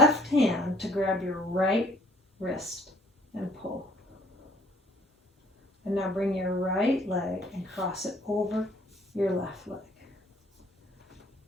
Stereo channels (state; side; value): normal; both; correlation 0.59